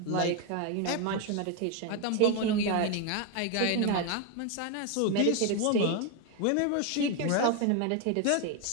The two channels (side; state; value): both; different; correlation 0.01